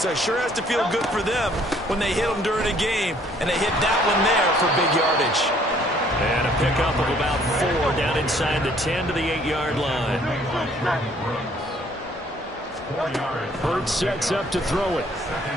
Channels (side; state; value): both; normal; correlation 0.61